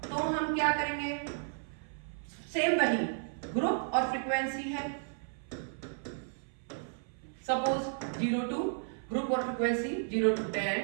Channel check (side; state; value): left; silent; 55 dB below the other